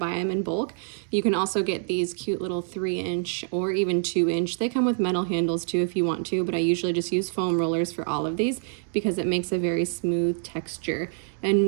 them in bulk. You can also get these cute little 3-inch or even 2-inch. They come with metal handles too if you want to, but I usually just use foam rollers for all of these because it makes a very smooth texture, and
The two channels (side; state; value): left; silent; digital silence